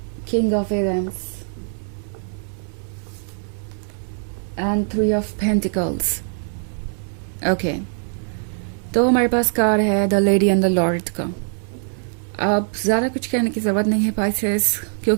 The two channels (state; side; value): silent; left; 64 dB below the other